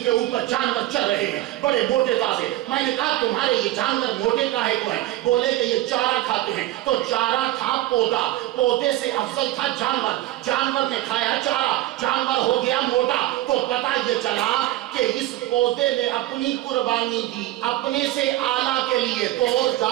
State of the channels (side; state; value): left; quieter; 15.6 dB